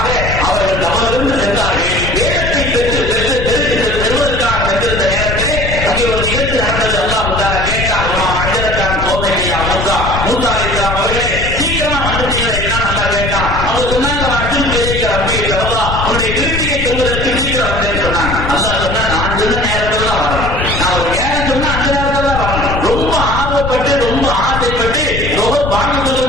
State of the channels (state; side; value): noise; left; rumble, 5 dB below the sound